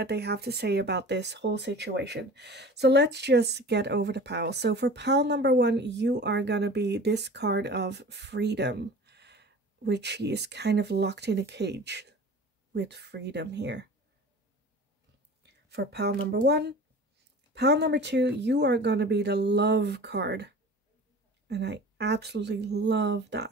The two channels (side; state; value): both; normal; correlation 0.40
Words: they have to say about this whole situation? So let's just get over the pile. So for pile number 1, you are gonna be this card of freedom, which he is kind of locked in a cage with freedom here. For pile number 1. Pile number 2, you are gonna be the love card. And I absolutely love